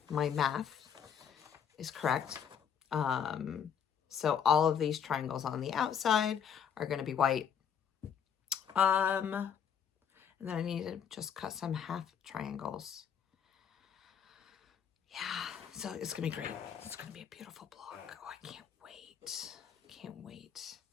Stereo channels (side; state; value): right; quieter; 7.9 dB